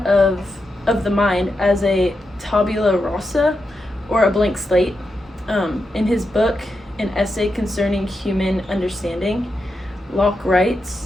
of the mind as a tabula rasa, or a blank slate. In his book, An Essay Concerning Human Understanding, Locke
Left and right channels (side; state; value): both; normal; correlation 0.87